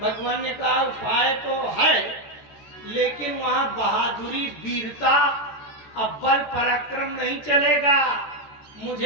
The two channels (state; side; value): late; right; 14 ms